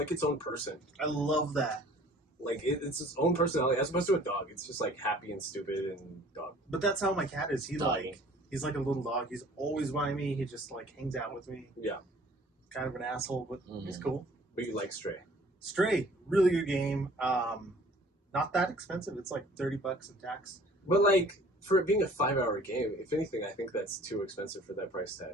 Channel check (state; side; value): normal; both; correlation 0.52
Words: its own person. I love that. Like it's its own personality as opposed to a dog. It's just like happy and stupid and dog. But that's how my cat is. He's Doggy. like a little dog. He's always by me. He just like hangs out with me. Yeah, Kind of an asshole, but he's cool. but you like Stray. Stray, really good game. Not that expensive. It's like $30 in tax. But like for it being a 5-hour game, if anything, I think that's too expensive for that price tag.